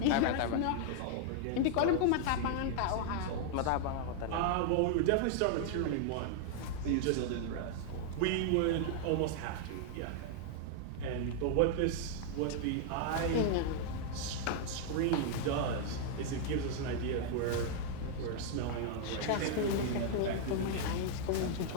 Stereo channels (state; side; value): different; both; correlation 0.00